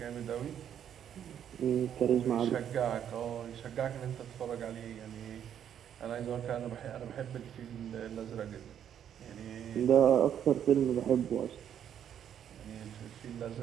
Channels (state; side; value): quieter; left; 9.4 dB